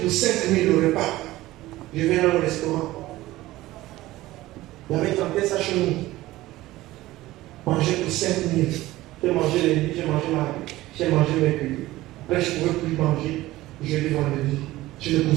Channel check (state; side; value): quieter; left; 17.1 dB